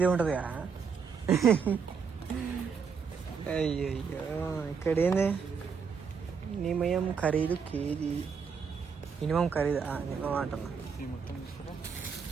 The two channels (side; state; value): left; quieter; 6.1 dB